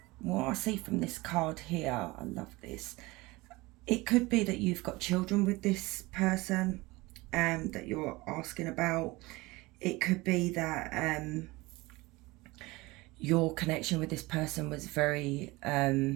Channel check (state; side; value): quieter; left; 21.9 dB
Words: what I see from this card here, I love this. It could be that you've got children with this person that you're asking about. It could be that your connection with this person was very